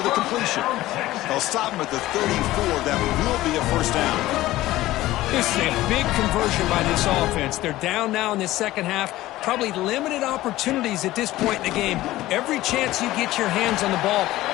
the completion. They'll stop him at the 34. That will be a first down. This is a big conversion by this offense. They're down now in the second half. Probably limited opportunities at this point in the game. Every chance you get your hands on the ball,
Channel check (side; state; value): right; quieter; 16.4 dB